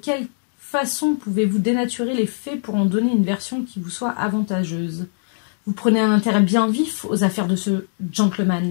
façon pouvez-vous dénaturer les faits pour en donner une version qui vous soit avantageuse? Vous prenez un intérêt bien vif aux affaires de ce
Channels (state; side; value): silent; right; digital silence